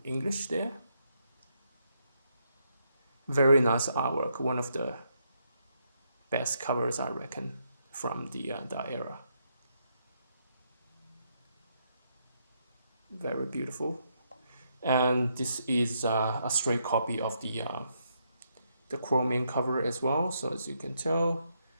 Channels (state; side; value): inverted; both; correlation -0.77